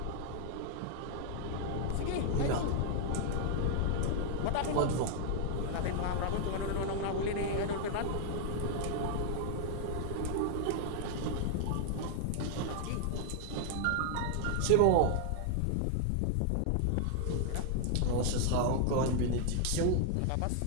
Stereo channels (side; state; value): both; different; correlation 0.00